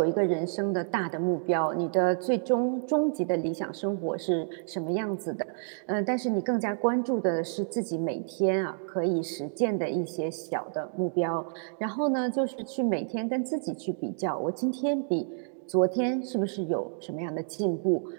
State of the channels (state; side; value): silent; left; digital silence